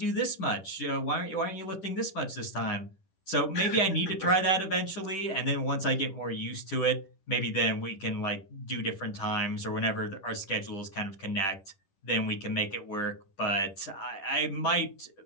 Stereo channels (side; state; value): right; late; 10 ms